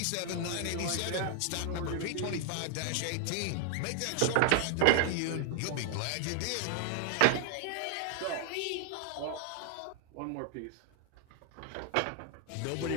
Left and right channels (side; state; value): both; different; correlation 0.00